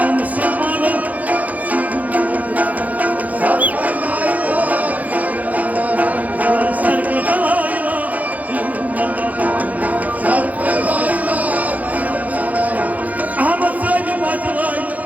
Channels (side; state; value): left; late; 0.076 ms